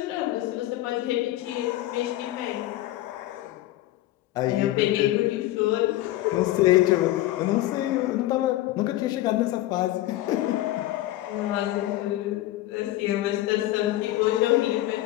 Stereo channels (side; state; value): right; quieter; 15.7 dB